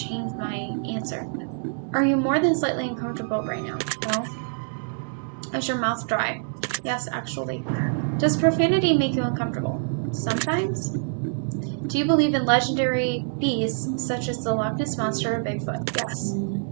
my answer. Are you more than slightly uncomfortable right now? No. Is your mouth dry? Yes, actually. Does profanity make you uncomfortable? Sometimes. Do you believe in legendary beasts such as the Loch Ness Monster or Bigfoot? Yes.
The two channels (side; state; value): left; silent; digital silence